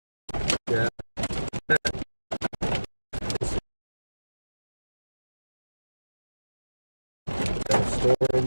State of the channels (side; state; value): both; inverted; correlation -1.00